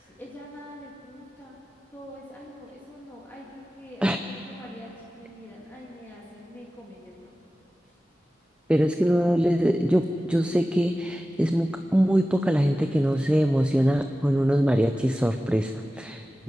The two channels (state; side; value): normal; both; correlation 0.95